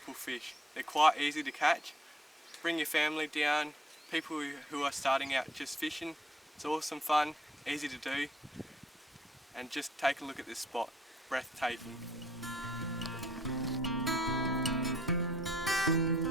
fish. They're quite easy to catch. Bring your family down, people who are starting out just fishing. It's awesome fun, easy to do, and just take a look at this spot. Breathtaking.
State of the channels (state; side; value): normal; both; correlation 0.64